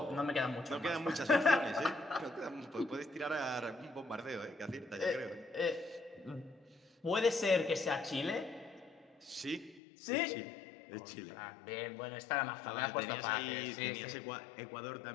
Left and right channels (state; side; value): drops out; right; at 9.8 s